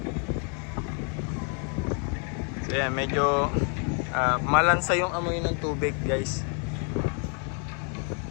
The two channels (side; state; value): right; quieter; 39.7 dB